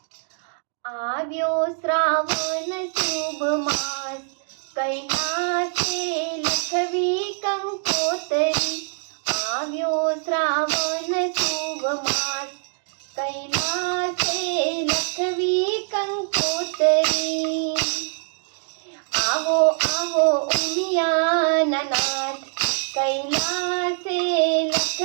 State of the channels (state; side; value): silent; left; 63 dB below the other